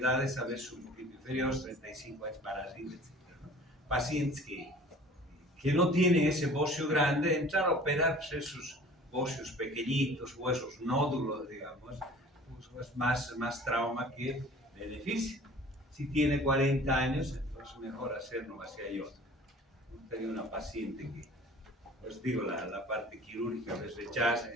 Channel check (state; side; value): normal; both; correlation 0.46